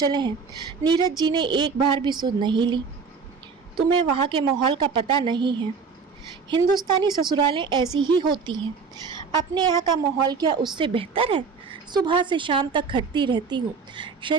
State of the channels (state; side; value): quieter; left; 5.3 dB